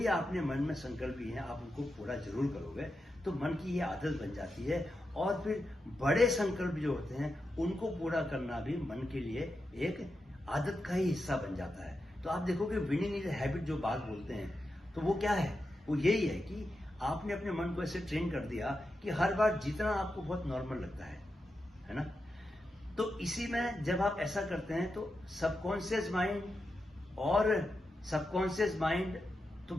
आपने मन में संकल्प लिए हैं आप उनको पूरा जरूर करोगे, तो मन की ये आदत बन जाती है। और फिर बड़े संकल्प जो होते हैं उनको पूरा करना भी मन के लिए एक आदत का ही हिस्सा बन जाता है। तो आप देखोगे विनिंग इज हैबिट जो बात बोलते हैं, तो वो क्या है, वो यही है कि आपने अपने मन को ऐसे ट्रेन कर दिया कि हर बार जीतना आपको बहुत नॉर्मल लगता है ना। तो इसी में जब आप ऐसा करते हैं तो सबकॉन्शियस माइंड तो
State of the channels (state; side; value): normal; both; correlation 0.88